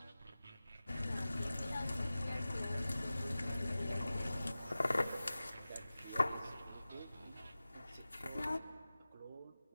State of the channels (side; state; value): both; inverted; correlation -0.96